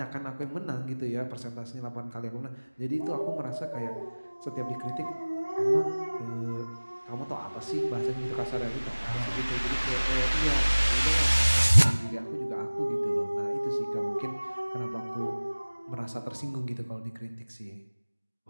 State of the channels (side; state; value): both; inverted; correlation -1.00